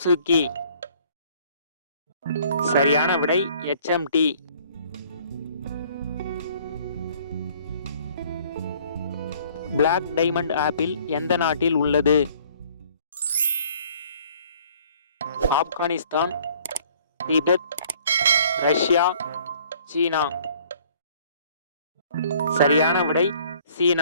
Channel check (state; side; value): inverted; both; correlation -0.57